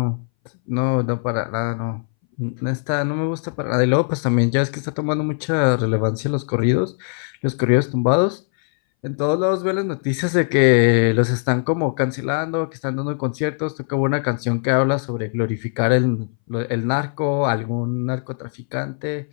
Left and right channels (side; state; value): right; silent; 62 dB below the other